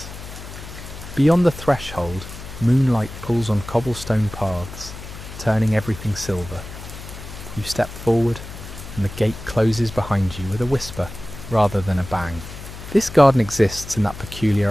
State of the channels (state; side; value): noise; left; hum, 13 dB below the sound